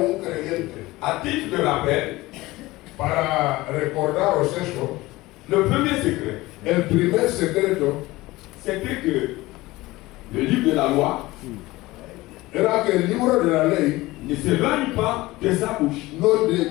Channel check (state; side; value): quieter; right; 19.5 dB